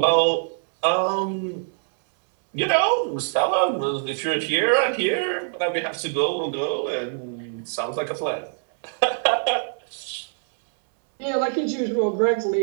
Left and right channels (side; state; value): left; silent; 63 dB below the other